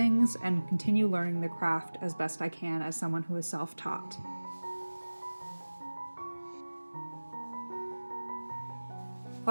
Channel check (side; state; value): both; inverted; correlation -1.00